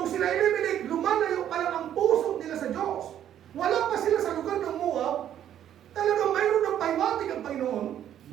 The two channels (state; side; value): quieter; left; 10.6 dB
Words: sila Elimelech, lumalayo pa lang ang puso nila sa Diyos. Wala pa sila sa lugar ng Moab. Talagang mayroon ng paiwatig ang Panginoon.